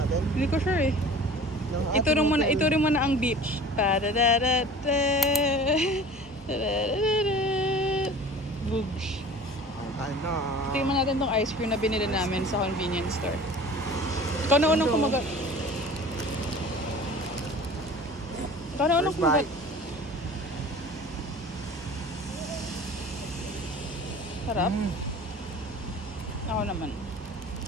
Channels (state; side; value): normal; both; correlation 0.42